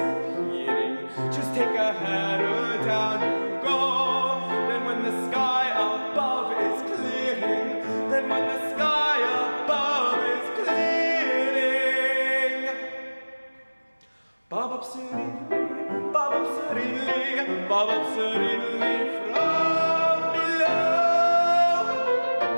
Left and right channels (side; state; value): both; inverted; correlation -1.00